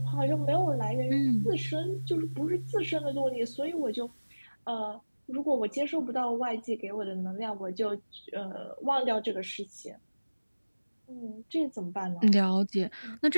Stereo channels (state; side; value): inverted; both; correlation -1.00